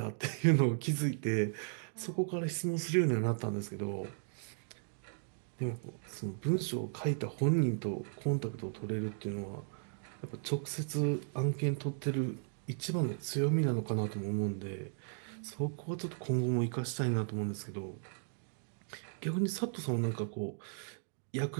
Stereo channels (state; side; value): silent; left; digital silence